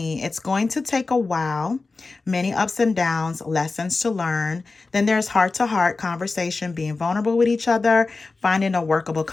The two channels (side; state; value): right; quieter; 3.8 dB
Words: It's going to take a while. Many ups and downs, lessons to learn. Then there's heart to heart conversation, being vulnerable with each other, finding a workable